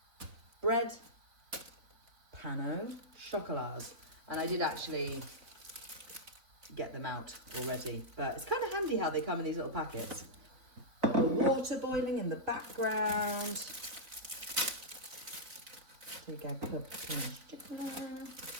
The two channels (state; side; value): late; left; 3.8 ms